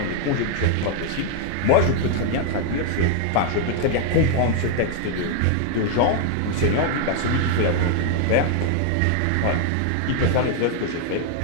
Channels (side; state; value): both; different; correlation 0.00